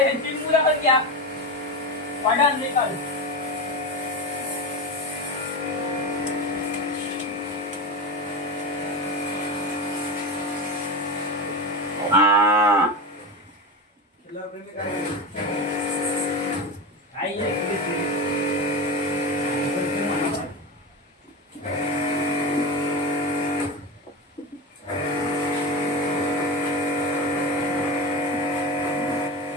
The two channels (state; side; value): normal; both; correlation 0.21